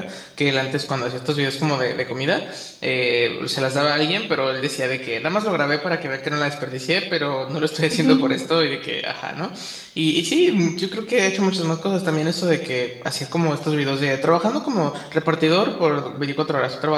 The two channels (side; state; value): both; identical; correlation 1.00